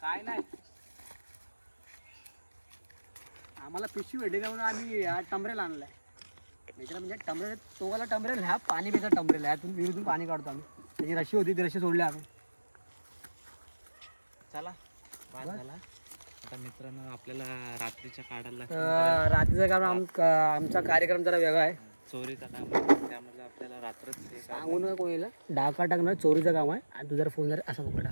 काय नाही. आम्हाला पिशवी भेटली का म्हणून आम्ही टमरेल आणलाय. मित्र म्हणजे टमरेल, तोगाला टमरेल, ह्या पाणी पिता टमरेल. ह्यातून विहिरीतून पाणी काढतो आम्ही. त्याची रशी होती, ती रशी सोडली आम्ही. चला बाद झाला. आता मित्रांनो आपल्याला रात्रीच्या काढायला रात्रीचा काम आमचा कार्यक्रम जरा वेगळा आहे. चोरीचा काम, त्यामुळे आपल्याला रात्रच सांगू नका कोणाला. डाका टाकणार चोरीचं काम आहे. आणि तू जर फोन जर असा पकडा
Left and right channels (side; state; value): both; inverted; correlation -1.00